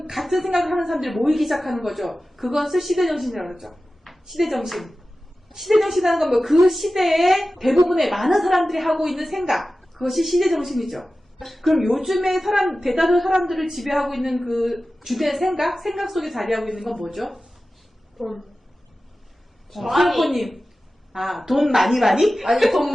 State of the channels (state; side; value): normal; both; correlation 0.95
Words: 같은 생각을 하는 사람들이 모이기 시작하는 거죠. 그것을 시대정신이라고 그러죠. 시대정신. 시대정신이라는 건 뭐 그 시대에 대부분의 많은 사람들이 하고 있는 생각. 그것이 시대정신이죠. 그럼 요즘에 대다수 사람들을 지배하고 있는 그 주된 생각 속에 자리하고 있는 건 뭐죠? 돈. 수영코님. 돈 많이? 아니, 돈